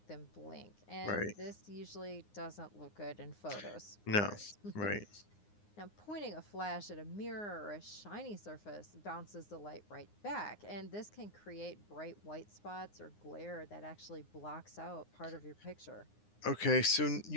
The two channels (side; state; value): right; late; 9.7 ms